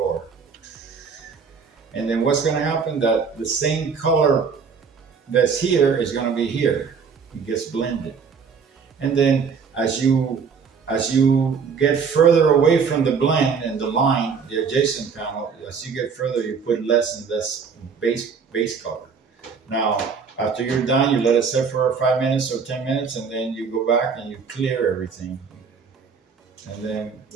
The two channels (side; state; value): left; quieter; 5.8 dB